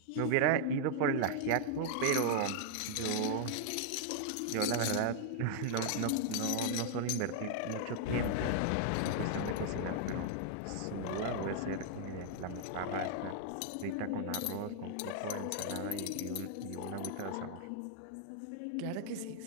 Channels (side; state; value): both; different; correlation -0.01